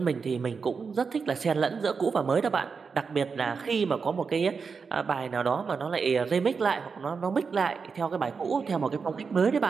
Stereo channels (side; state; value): left; quieter; 5.3 dB